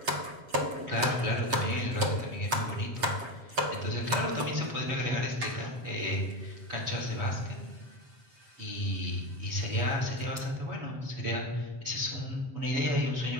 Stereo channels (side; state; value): left; late; 7.7 ms